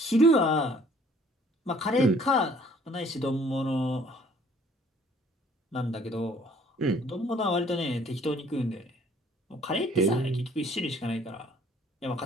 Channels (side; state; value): both; normal; correlation 0.58